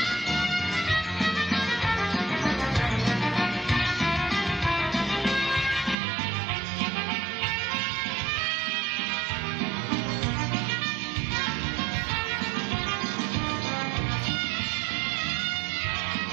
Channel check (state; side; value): drops out; left; at 6.0 s